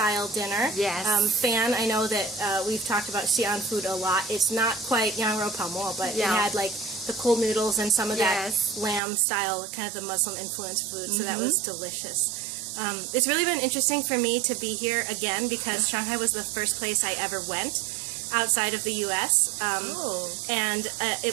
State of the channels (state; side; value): drops out; left; at 9.0 s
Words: dinner. Yes. Fan, I know that we've talked about Xi'an food a lot. It's not quite yang rou pao mo, but it had like the cold noodles and some of that lamb-style, kind of the Muslim-influenced food, so that was delicious. It's really been interesting for me to be here again because Shanghai was the first place I ever went outside of the U.S. And